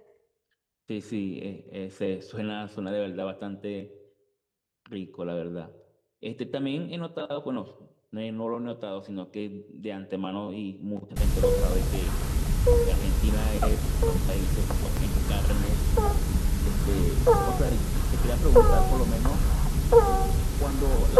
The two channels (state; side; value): identical; both; correlation 1.00